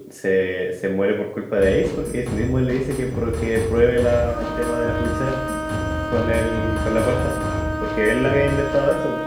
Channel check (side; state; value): both; identical; correlation 1.00